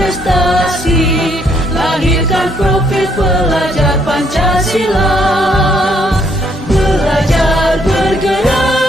lahirkan profil pelajar Pancasila. Belajar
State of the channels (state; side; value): normal; both; correlation 0.70